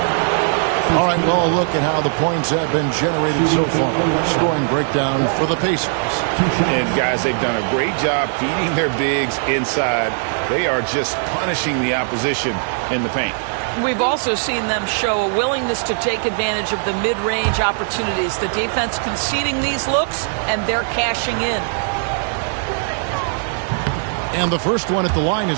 All right, well, look at how the points have been generated so far. Scoring breakdown for the Pacers. And, guys, they've done a great job feeding their bigs inside. They are just punishing the opposition in the paint. We've also seen them show a willingness to take advantage of the mid-range opportunities. The defense conceding these looks, and they're cashing in. And the first one at the line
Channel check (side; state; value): left; silent; 65 dB below the other